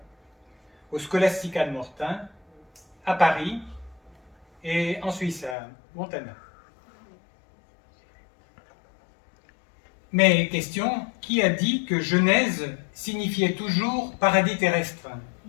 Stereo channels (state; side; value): drops out; right; at 5.6 s